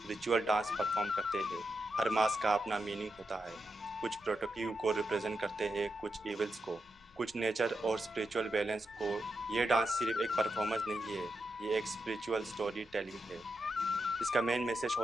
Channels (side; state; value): left; noise; rumble, 30 dB below the sound